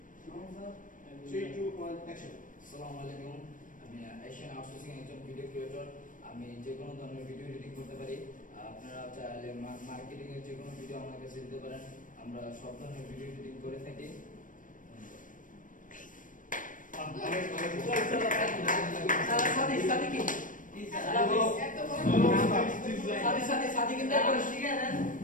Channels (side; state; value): right; late; 0.38 ms